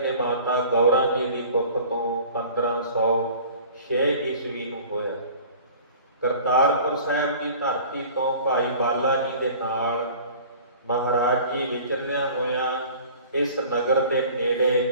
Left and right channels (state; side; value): inverted; both; correlation -0.45